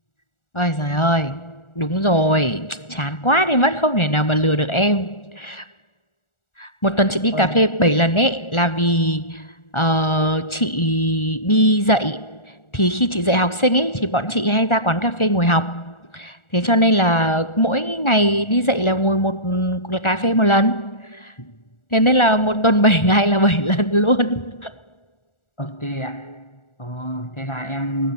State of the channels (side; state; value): right; late; 1.4 ms